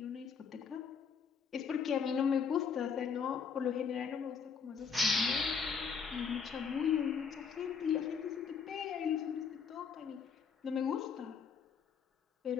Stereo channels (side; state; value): right; quieter; 6.2 dB